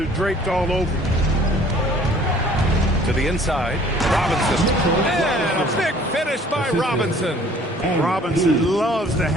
draped all over you. To the inside, Robinson. And a big finish by Robinson. Robinson loves to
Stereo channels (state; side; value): normal; both; correlation 0.54